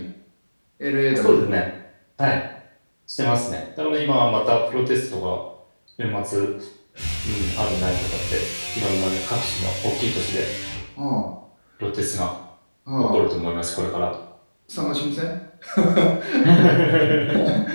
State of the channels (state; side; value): inverted; both; correlation -1.00